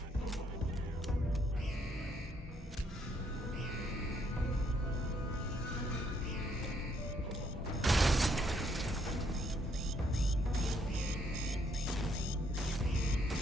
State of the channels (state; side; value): normal; both; correlation 0.71